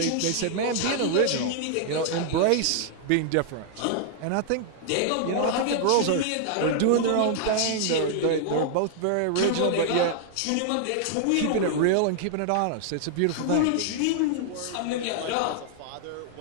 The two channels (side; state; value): both; different; correlation 0.00